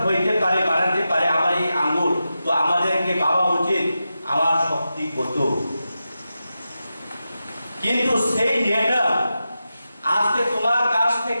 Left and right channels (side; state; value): both; inverted; correlation -0.91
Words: হইতে পারে বানাতে পারে আমার এই আঙ্গুল তো আমাদেরকে ভাবা উচিত আমার শক্তি কত কিন্তু সেই নেতা আজকে তোমার কাছ